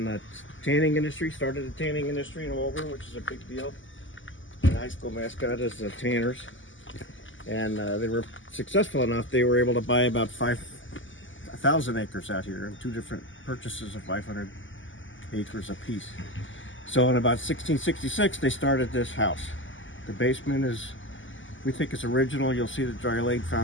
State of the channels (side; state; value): right; late; 0.56 ms